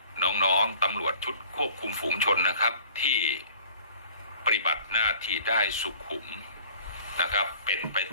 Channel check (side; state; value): both; inverted; correlation -0.49